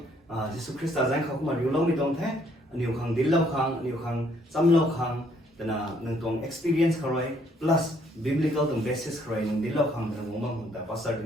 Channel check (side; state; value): both; normal; correlation 0.67